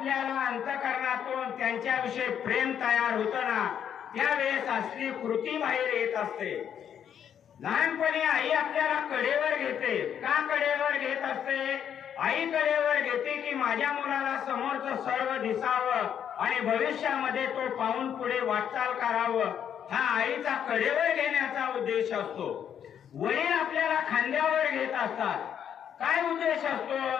अंतःकरणातून त्यांच्याविषयी प्रेम तयार होतं ना, त्यावेळेस असली कृती बाहेर येत असते। लहानपणी आई आपल्याला कडेवर घेते। का कडेवर घेत असते? आई कडेवर घेते की माझ्या मुलाला समोरचं सर्व दिसावं आणि भविष्यामध्ये तो पाहून पुढे वाटचाल करावं, हा आईचा कडेवर घेण्याचा उद्देश असतो। वडील आपल्याला खांद्यावर घेत असतात। काय उद्देश असतो?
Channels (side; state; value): right; quieter; 8.9 dB